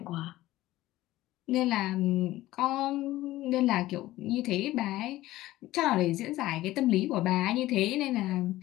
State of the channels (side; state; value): right; quieter; 16.3 dB